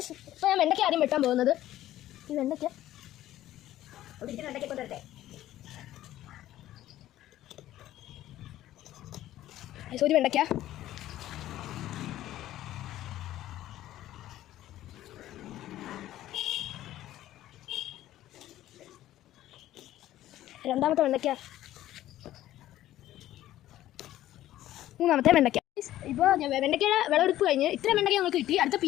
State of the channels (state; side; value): quieter; right; 13.8 dB